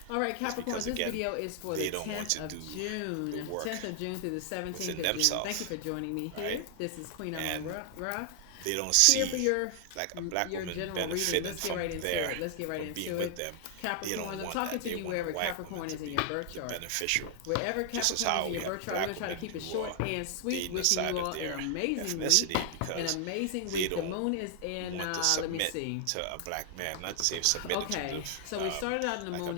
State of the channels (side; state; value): both; different; correlation 0.00